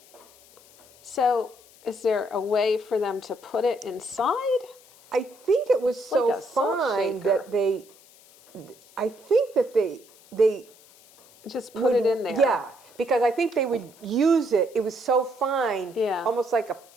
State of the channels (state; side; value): noise; left; hiss, 26 dB below the sound